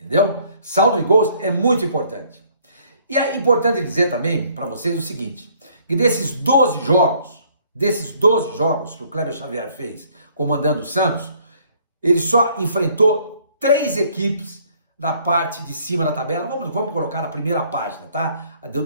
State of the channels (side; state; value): both; inverted; correlation -0.62